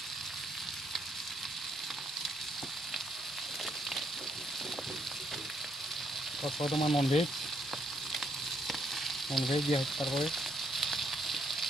और तुम्हार नन भेज दिया तारपर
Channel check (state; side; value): normal; both; correlation 0.72